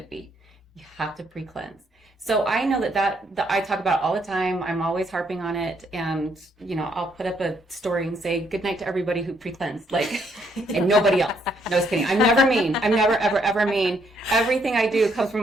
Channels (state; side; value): normal; both; correlation 0.71